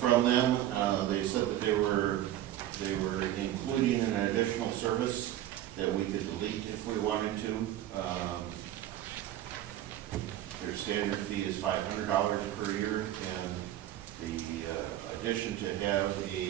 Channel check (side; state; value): left; quieter; 13.0 dB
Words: them. They said that they were including an additional service that we could delete if we wanted to. Their standard fee is $500 per year, and the addition to have